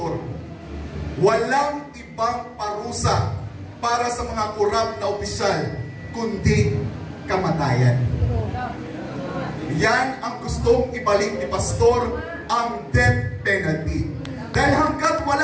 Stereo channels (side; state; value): both; identical; correlation 1.00